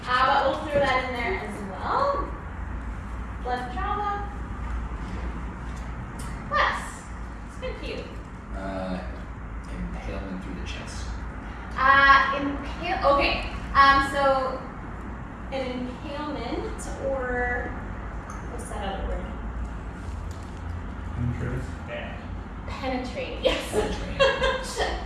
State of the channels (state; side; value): identical; both; correlation 1.00